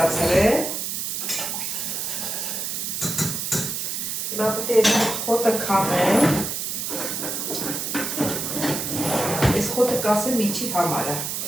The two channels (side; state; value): right; noise; hiss, 3 dB below the sound